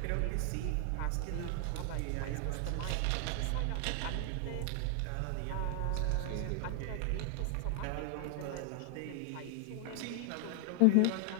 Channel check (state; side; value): different; both; correlation 0.00